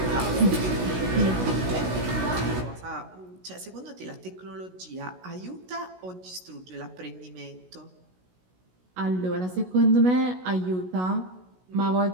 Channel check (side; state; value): left; late; 16 ms